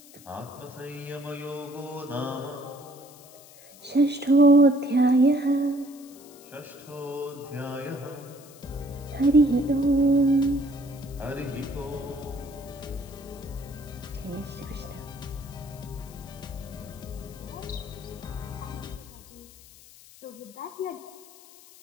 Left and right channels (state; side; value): noise; left; hiss, 22 dB below the sound